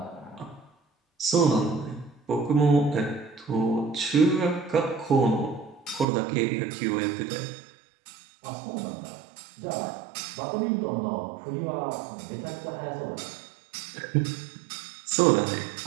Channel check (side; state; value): left; drops out; at 6.1 s